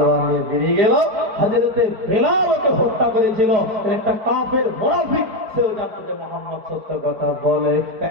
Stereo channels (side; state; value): left; late; 4.5 ms